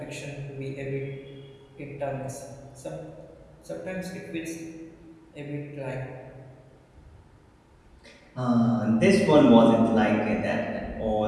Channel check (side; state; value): both; identical; correlation 1.00